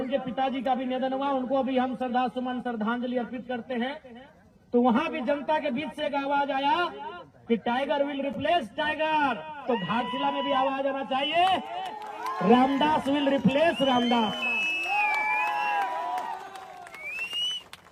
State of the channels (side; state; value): both; identical; correlation 1.00